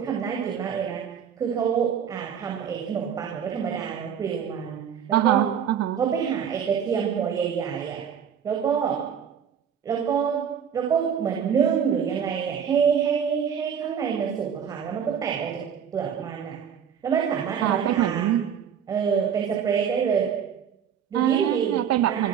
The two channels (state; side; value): quieter; left; 8.0 dB